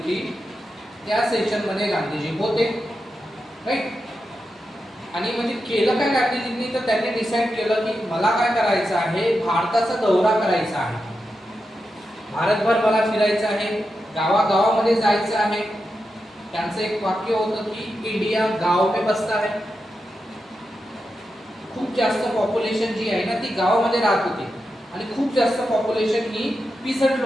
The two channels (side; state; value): both; normal; correlation 0.88